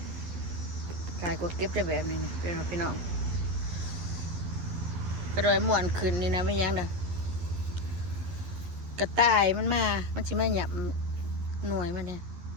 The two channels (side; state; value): left; late; 11 ms